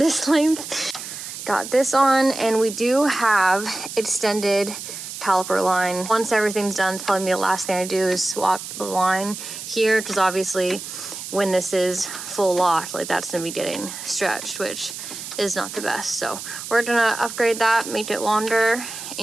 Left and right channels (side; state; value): right; noise; hiss, 9 dB below the sound